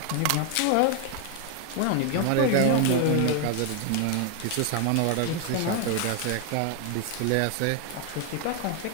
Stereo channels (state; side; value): different; both; correlation 0.00